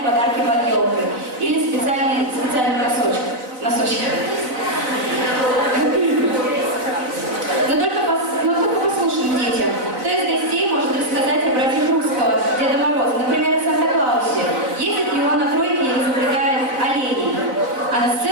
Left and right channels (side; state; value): left; late; 4.0 ms